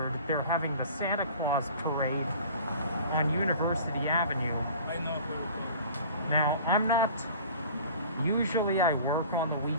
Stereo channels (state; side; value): inverted; both; correlation -0.44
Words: they're having the Santa Claus parade on University Avenue. Now, usually I work on the